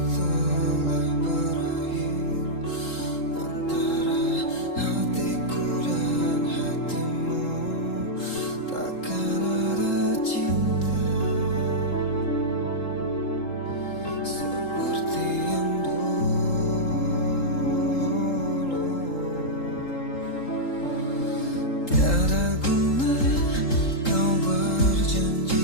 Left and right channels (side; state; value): right; late; 3.8 ms